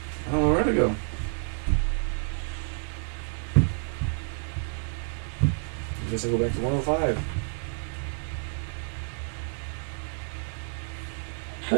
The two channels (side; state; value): left; silent; 59 dB below the other